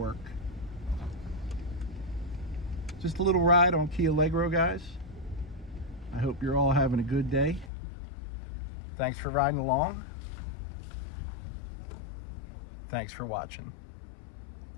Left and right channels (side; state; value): right; drops out; at 7.7 s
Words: Just a little ride on Allegro, guys. I hope you're all having a good day. Thanks for riding along. Thanks for watching.